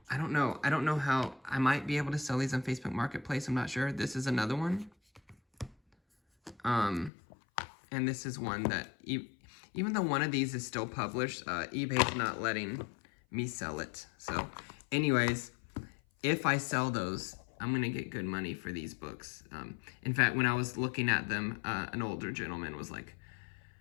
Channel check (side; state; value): right; drops out; at 7.1 s